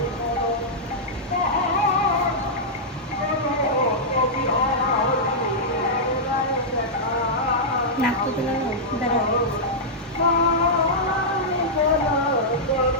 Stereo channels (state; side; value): normal; both; correlation -0.10